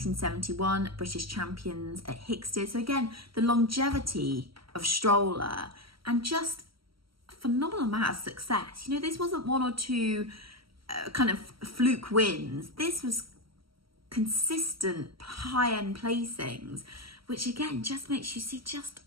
British champions at Hickstead. So again, the longevity of Stroller and just a phenomenal amount of success. You know, this wasn't one or two kind of fluke wins. This was consistent high-end placings, which again just makes you see just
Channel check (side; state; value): left; late; 0.75 ms